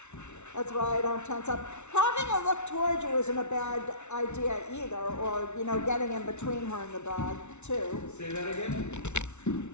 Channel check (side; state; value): right; late; 0.82 ms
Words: That's why I don't tense up. Having her look towards you isn't a bad idea either, or, getting in between her and the dog, too. Say that again?